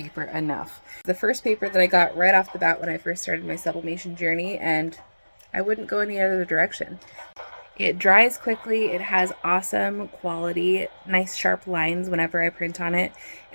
enough. The first paper that I got right off the bat when I first started my sublimation journey, and I wouldn't go any other direction. It dries quickly, it has awesome quality, nice sharp lines whenever I print on it,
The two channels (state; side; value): inverted; both; correlation -1.00